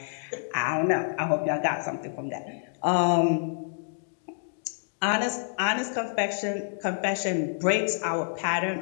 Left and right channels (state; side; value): silent; right; digital silence